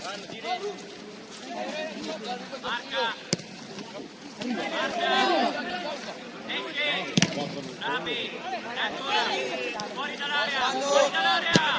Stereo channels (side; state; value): both; identical; correlation 1.00